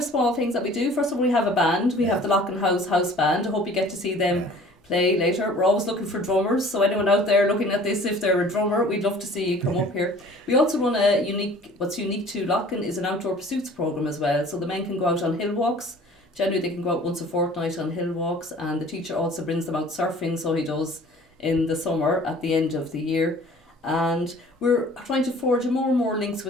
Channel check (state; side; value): normal; both; correlation 0.49